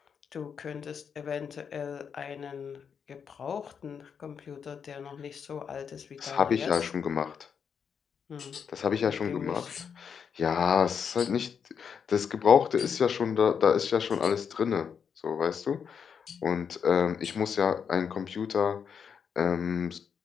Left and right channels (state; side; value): quieter; right; 7.0 dB